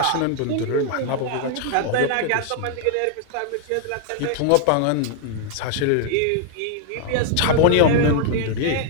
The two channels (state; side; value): different; both; correlation 0.00